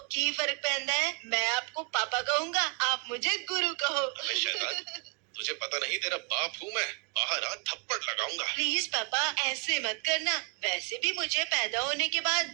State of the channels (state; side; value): quieter; left; 36.9 dB